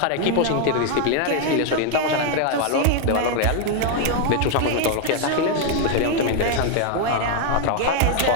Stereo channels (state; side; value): different; both; correlation 0.01